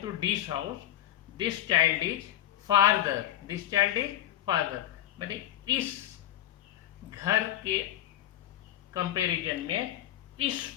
house, this child is farther. मैंने इस घर के कंपेरिजन में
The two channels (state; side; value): quieter; right; 12.6 dB